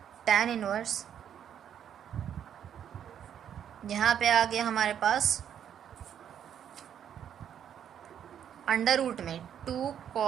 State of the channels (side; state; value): left; quieter; 9.2 dB